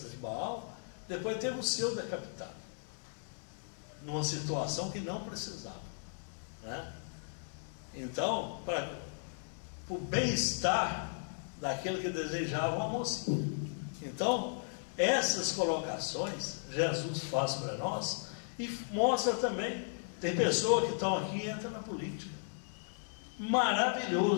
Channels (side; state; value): right; silent; 54 dB below the other